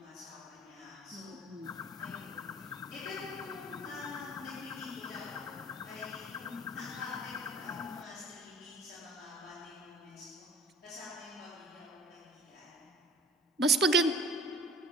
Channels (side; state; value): both; normal; correlation 0.48